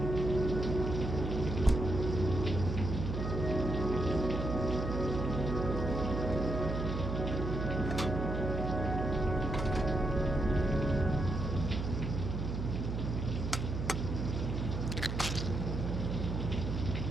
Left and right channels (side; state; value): right; noise; hum, 3 dB below the sound